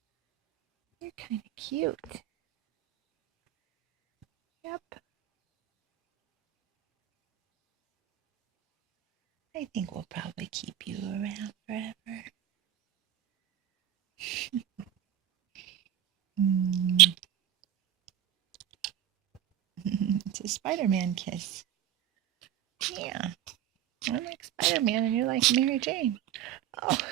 You're kind of cute. Yep. I think we'll probably keep you around forever. It's a Spider-Man kiss. Yeah. I'm like Spider-Man and you're like Mary Jane. Oh,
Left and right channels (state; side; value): quieter; left; 11.5 dB